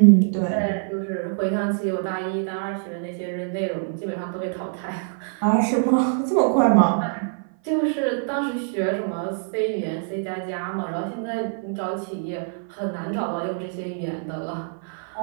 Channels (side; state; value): left; silent; 55 dB below the other